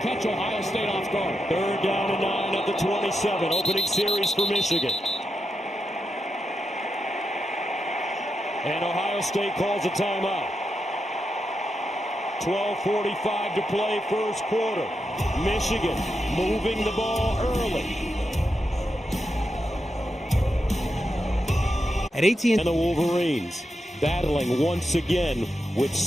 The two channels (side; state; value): both; normal; correlation 0.86